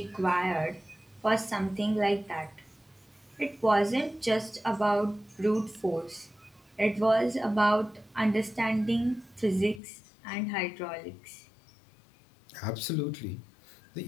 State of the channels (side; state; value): right; drops out; at 9.8 s